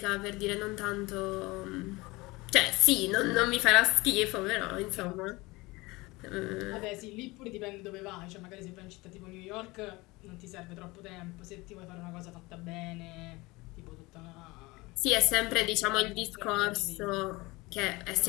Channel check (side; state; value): right; quieter; 22.5 dB